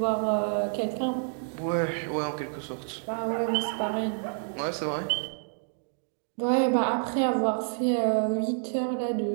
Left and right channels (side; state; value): left; silent; digital silence